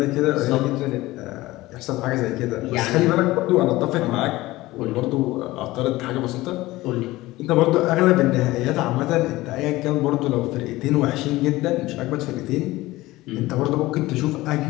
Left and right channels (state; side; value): quieter; right; 18.5 dB